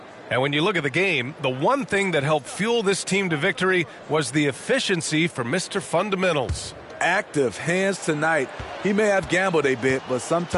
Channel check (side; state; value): both; identical; correlation 1.00